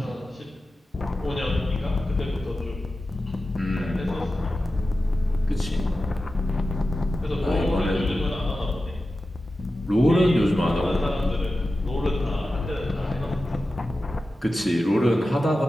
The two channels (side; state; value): both; normal; correlation 0.93